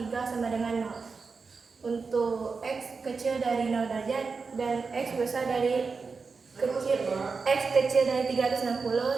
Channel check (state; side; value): quieter; left; 4.7 dB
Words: sama dengan 0. Untuk X kecil dari 0 derajat dan X besar dari X kecil dari